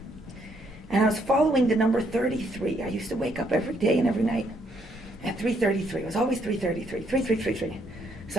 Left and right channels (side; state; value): both; normal; correlation 0.71